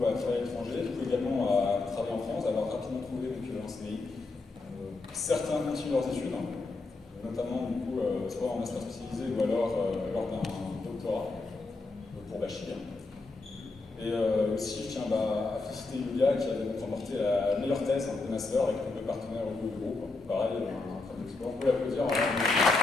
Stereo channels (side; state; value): right; quieter; 3.5 dB